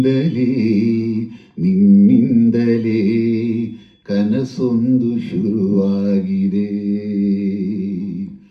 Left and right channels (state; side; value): identical; both; correlation 1.00